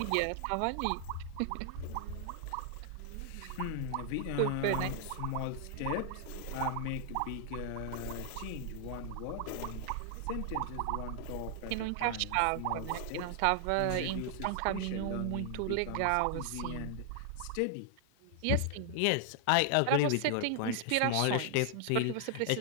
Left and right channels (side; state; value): both; different; correlation 0.00